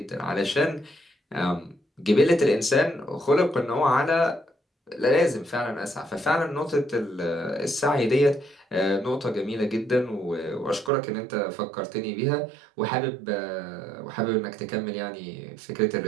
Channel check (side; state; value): left; drops out; at 10.9 s